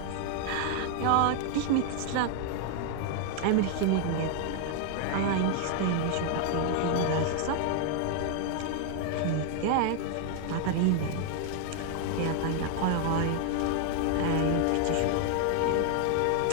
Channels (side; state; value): both; different; correlation 0.00